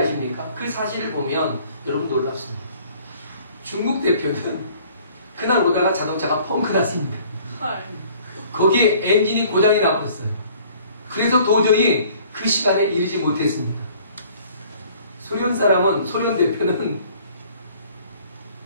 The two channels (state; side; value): inverted; both; correlation -0.55